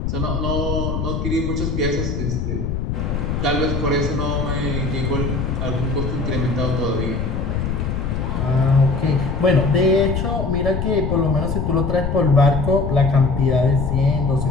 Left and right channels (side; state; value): left; noise; rumble, 2 dB below the sound